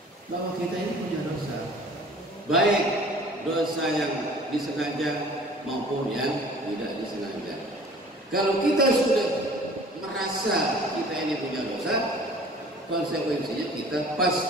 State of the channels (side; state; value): both; normal; correlation 0.48